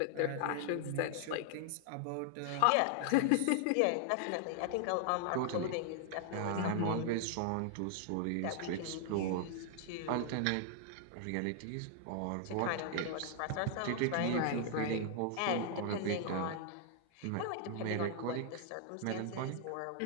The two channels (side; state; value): both; different; correlation 0.00